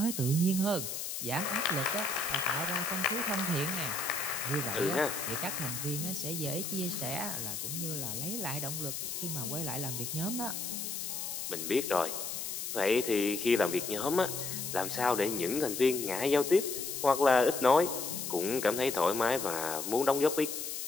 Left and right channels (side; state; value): left; noise; hiss, 5 dB below the sound